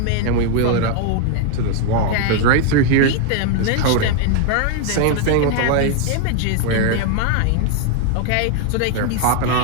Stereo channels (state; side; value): different; both; correlation 0.00